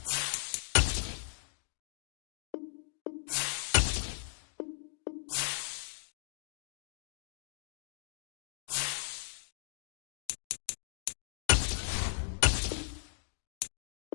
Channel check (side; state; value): right; silent; digital silence